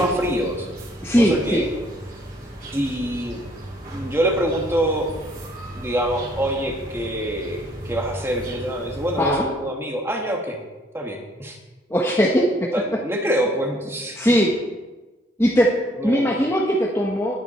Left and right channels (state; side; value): normal; both; correlation 0.64